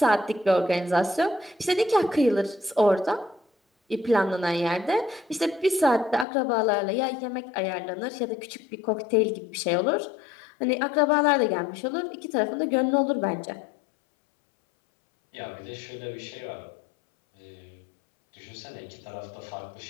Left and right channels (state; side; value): drops out; right; at 6.2 s